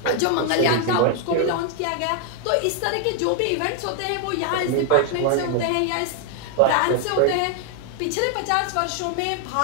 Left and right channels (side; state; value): both; different; correlation 0.00